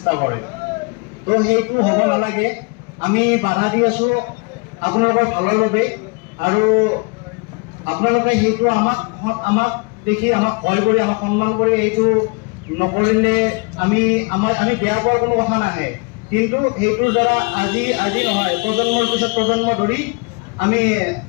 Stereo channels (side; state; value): right; quieter; 30.8 dB